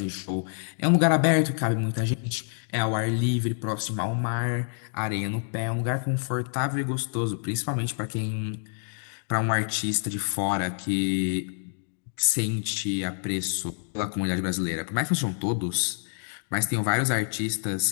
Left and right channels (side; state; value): right; silent; digital silence